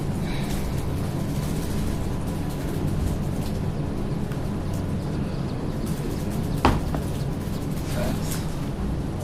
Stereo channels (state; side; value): identical; both; correlation 1.00